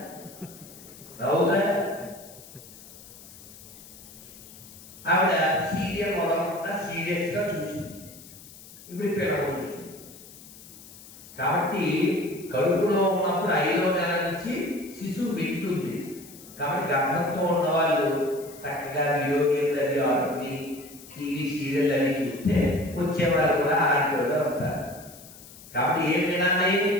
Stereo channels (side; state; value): left; noise; hiss, 19 dB below the sound